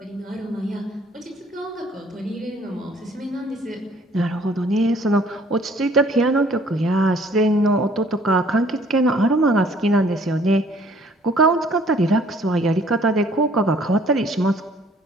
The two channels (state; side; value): normal; both; correlation 0.58